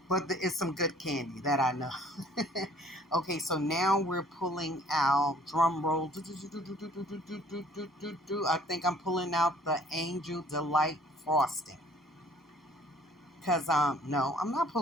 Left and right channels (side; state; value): both; normal; correlation 0.56